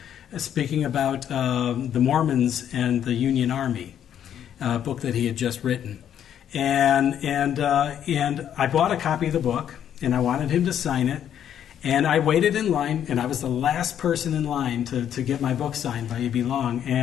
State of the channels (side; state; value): right; quieter; 9.7 dB